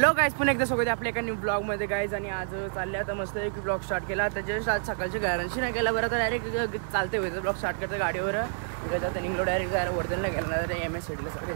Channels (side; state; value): left; silent; digital silence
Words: गाईज, पुन्हा एकदा स्वागत आहे आपल्या एका न्यू ब्लॉग मध्ये गाईज. आणि आज चालले आता मस्त एक ब्लॉग स्टार्ट केला. त्याच्या आज सकाळच्या गॅरंटी नाही केला बरं, तर डायरेक्ट चालते होते ब्लॉग स्टार्ट करतं गाडीवर. आता निघलो डायरेक्ट जायला वर्धनला गेला ना, तर MS-CITला सगळे